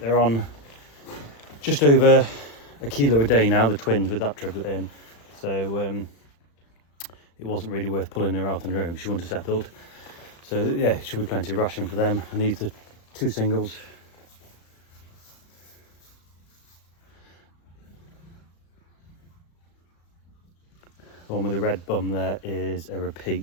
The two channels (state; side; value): late; right; 35 ms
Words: on just over a kilo a day now, the twins with that triplet in. So it wasn't really worth pulling her out on her own because she wouldn't have settled. So yeah, it should be plenty of ration for them. And these are 2 singles. The one with the red bum there is a